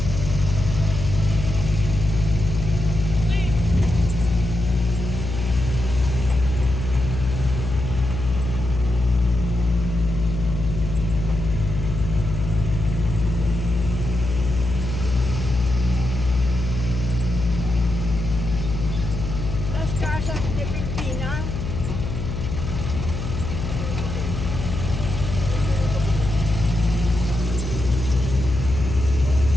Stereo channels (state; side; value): noise; left; hum, 4 dB below the sound